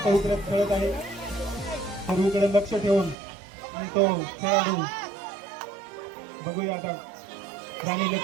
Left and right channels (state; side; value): drops out; left; at 3.2 s